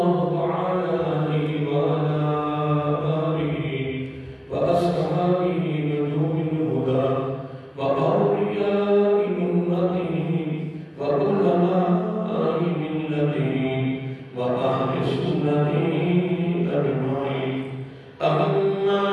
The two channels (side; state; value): both; identical; correlation 1.00